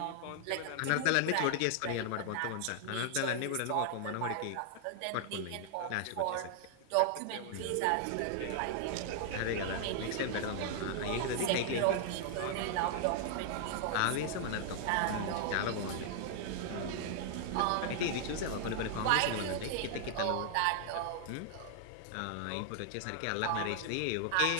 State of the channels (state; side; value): different; both; correlation 0.00